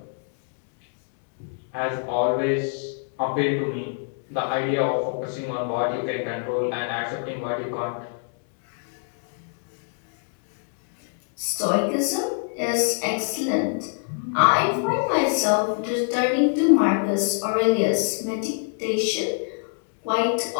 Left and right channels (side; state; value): right; silent; 61 dB below the other